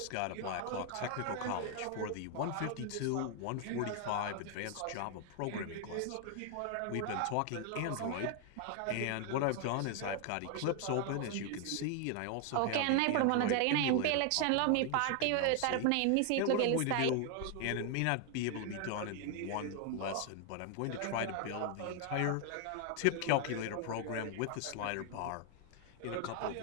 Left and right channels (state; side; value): different; both; correlation 0.00